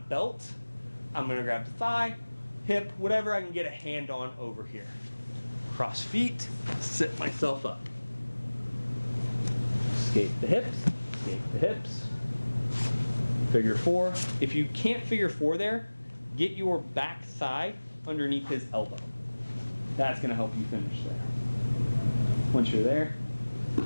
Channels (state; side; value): inverted; both; correlation -1.00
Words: belt, I'm gonna grab the thigh, hip, whatever I can get a hand on over here. Cross feet, sit myself up. Escape the hips, Figure 4. If you can't figure 4 there, get your back thigh underneath his elbow. That's gonna help you finish there. Once you're there,